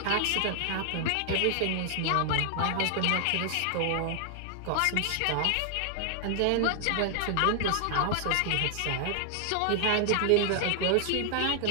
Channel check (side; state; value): both; different; correlation 0.00